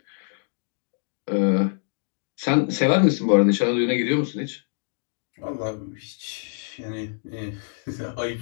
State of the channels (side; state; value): right; silent; 62 dB below the other